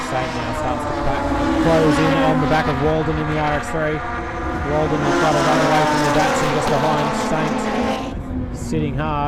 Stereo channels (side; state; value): both; identical; correlation 1.00